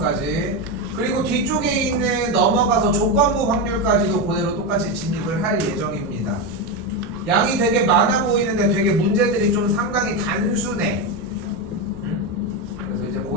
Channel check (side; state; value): both; normal; correlation 0.12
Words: 그리고 뒤쪽에 있는 넘어가서 조건부 확률까지도 그대로 똑같이 진입을 할 예정입니다. 양이 되게 많아 보이는데 되게 문제들이 좀 상당히 단순해. 그래서 이제